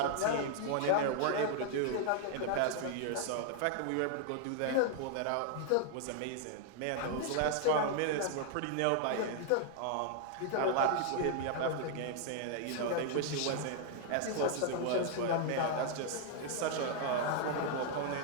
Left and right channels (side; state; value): both; different; correlation 0.00